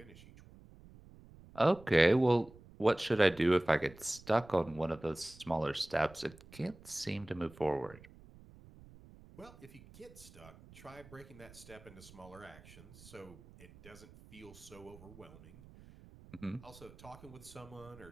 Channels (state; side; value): noise; right; rumble, 21 dB below the sound